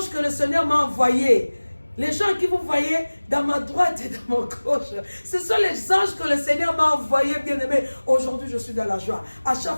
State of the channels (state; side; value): inverted; both; correlation -1.00